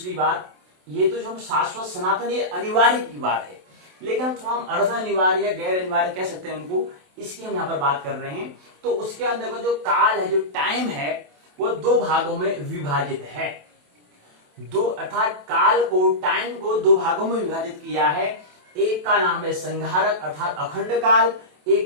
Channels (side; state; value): left; late; 27 ms